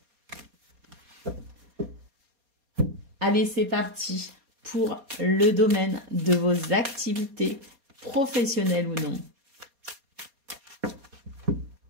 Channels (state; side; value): late; left; 4.2 ms